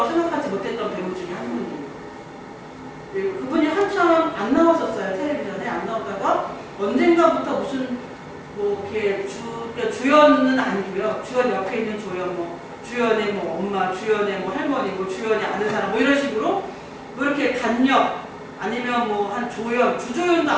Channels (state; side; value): identical; both; correlation 1.00